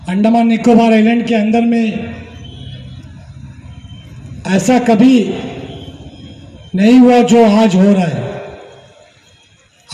अंडमान निकोबार आइलैंड के अंदर में ऐसा कभी नहीं हुआ जो आज हो रहा है।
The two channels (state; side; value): identical; both; correlation 1.00